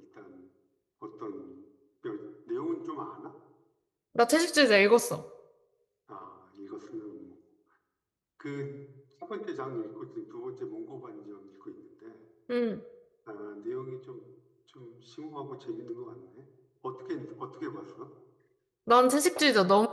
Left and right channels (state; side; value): identical; both; correlation 1.00